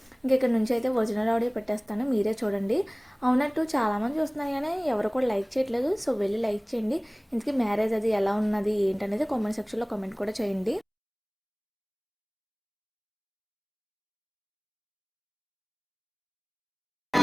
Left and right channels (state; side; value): identical; both; correlation 1.00